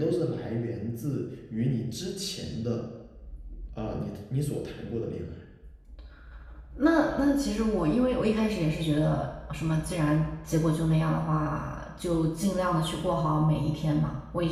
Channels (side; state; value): both; identical; correlation 1.00